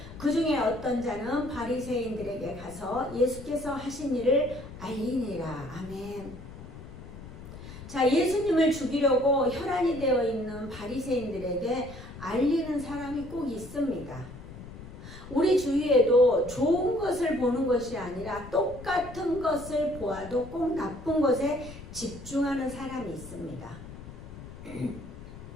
그 중에 어떤 자는 바리새인들에게 가서 예수께서 하신 일을 알리니라. 아멘. 자, 예수님을 죽이려고 혈안이 되어 있는 바리새인들에게 알리는 사람이 꼭 있습니다. 우리 주위에도 좋은 것을 보는 것이 아니라 똑같은 것을 보아도 꼭 나쁜 것에 집중하는 사람이 있습니다.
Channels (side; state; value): left; noise; rumble, 14 dB below the sound